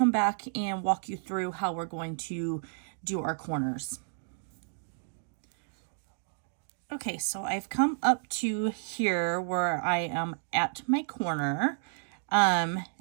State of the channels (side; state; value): left; silent; digital silence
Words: back and walk you through how we're going to do our corners. Okay, so I've come up to here where I am at my corner, and